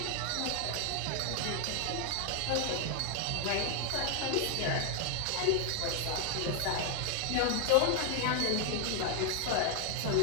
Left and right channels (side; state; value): both; different; correlation 0.00